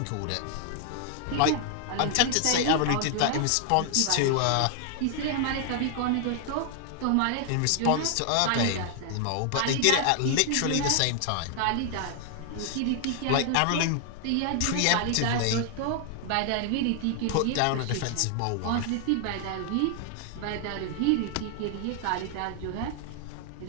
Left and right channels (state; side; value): different; both; correlation 0.00